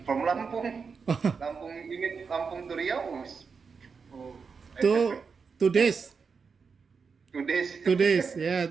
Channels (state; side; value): quieter; left; 5.4 dB